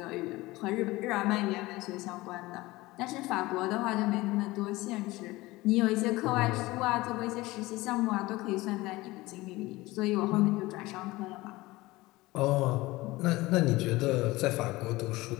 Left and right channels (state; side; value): quieter; right; 20.0 dB